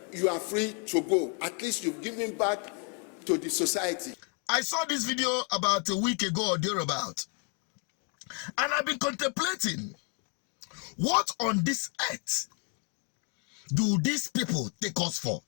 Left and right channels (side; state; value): right; quieter; 38.8 dB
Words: you are free to go. At least you've given back to the society. I saw this video about a week ago or thereabout, and I've been contemplating, what on this earth do these people take us for?